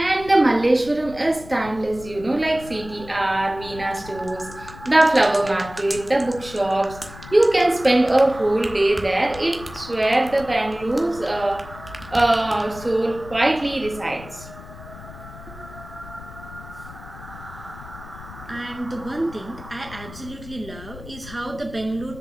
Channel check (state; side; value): noise; left; rumble, 16 dB below the sound